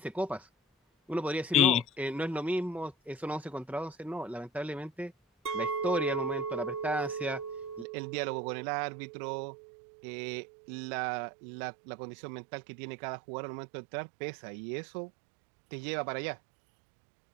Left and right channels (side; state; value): left; drops out; at 7.9 s